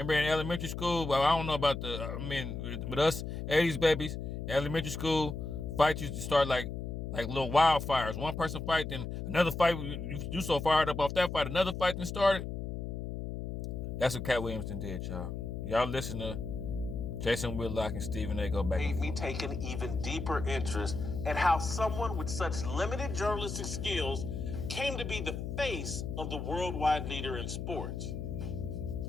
elementary school? Well, I don't know about but us '80s babies, elementary school fights used to start like little wildfires. One person fight, then another fight. You so fired up off that fight, another fight then started. That's what Cat Williams did, y'all. Y'all listen to Jason Whitlock and Stephen A. go back and forth. Made me take an even deeper interest in how someone with such limited journalistic skills came to be the face of the worldwide leader in sports.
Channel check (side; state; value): left; noise; hum, 5 dB below the sound